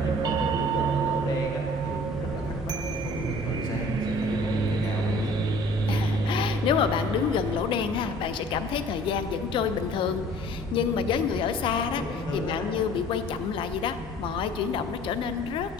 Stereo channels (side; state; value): both; normal; correlation 0.50